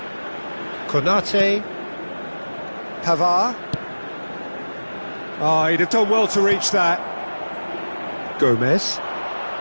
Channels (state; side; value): inverted; both; correlation -1.00